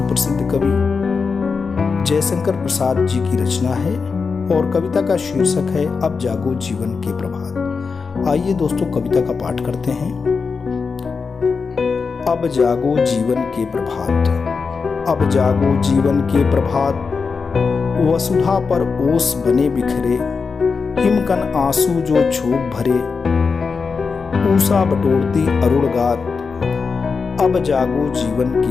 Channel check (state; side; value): quieter; right; 5.0 dB